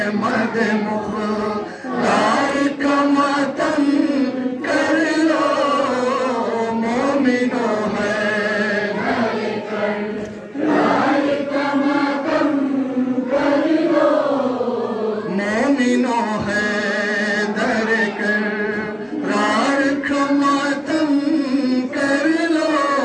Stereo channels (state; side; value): identical; both; correlation 1.00